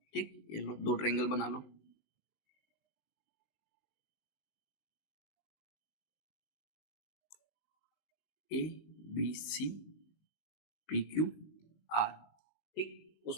ठीक, ये लो दो ट्रायंगल बना लो। A B C P Q R. ठीक,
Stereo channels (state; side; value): late; right; 19 ms